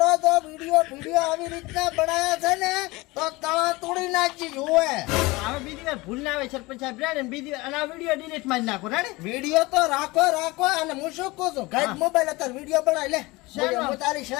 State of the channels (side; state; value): right; quieter; 22.3 dB